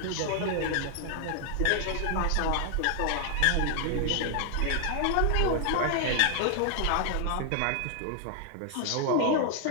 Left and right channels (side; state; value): both; different; correlation 0.00